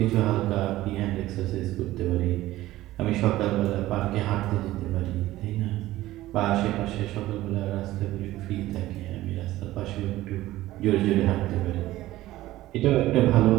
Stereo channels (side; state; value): left; quieter; 16.0 dB